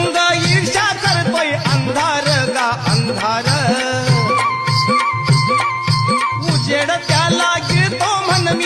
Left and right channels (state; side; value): identical; both; correlation 1.00